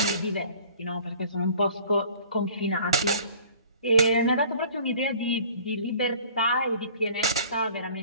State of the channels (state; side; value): inverted; both; correlation -0.49